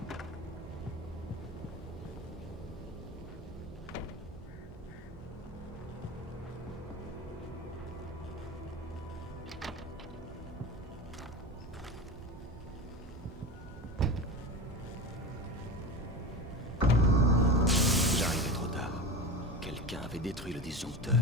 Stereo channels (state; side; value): normal; both; correlation 0.27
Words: Détruit le disjoncteur.